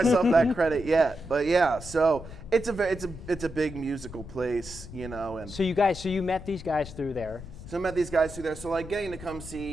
that credit yet. But yeah, so it's a big musical place, and So you met these guys through there. So I met these guys through there. So getting to come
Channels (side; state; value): left; noise; rumble, 14 dB below the sound